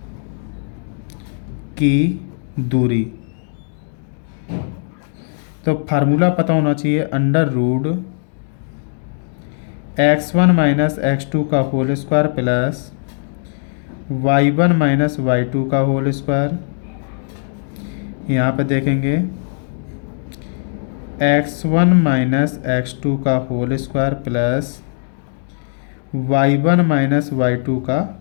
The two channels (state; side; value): silent; right; digital silence